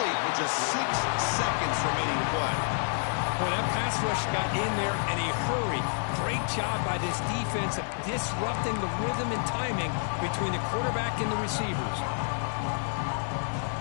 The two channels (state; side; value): silent; right; 59 dB below the other